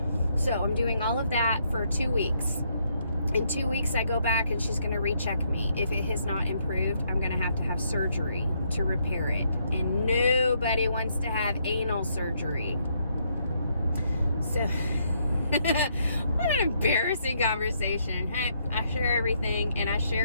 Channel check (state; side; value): inverted; both; correlation -0.74